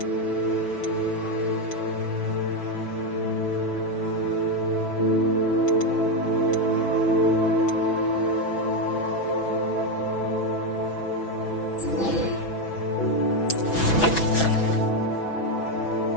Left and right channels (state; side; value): late; right; 6.0 ms